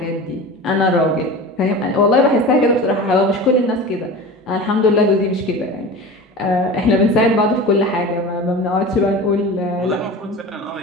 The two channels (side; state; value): both; normal; correlation 0.33